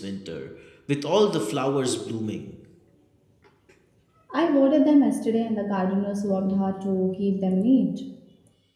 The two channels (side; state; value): both; identical; correlation 1.00